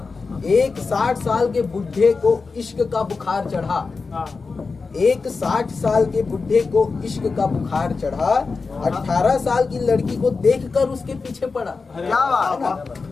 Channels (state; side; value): quieter; right; 4.4 dB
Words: एक 60 साल के बुढ़े को इश्क का बुखार चढ़ा। एक 60 साल के बुढ़े को इश्क का बुखार चढ़ा। 18 साल की लड़की को देखकर उसके पीछे पड़ा। क्या बात है।